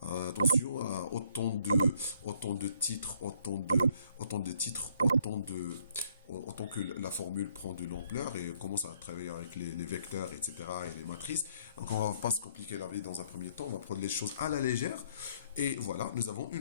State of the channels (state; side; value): inverted; both; correlation -0.66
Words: attention à autant de titres, autant que la formule prend de l'ampleur et commence à travailler avec les vecteurs, etc., et les matrices. Donc, on ne va pas se compliquer la vie dans un premier temps, on va prendre les choses à la légère. Et voilà, nous avons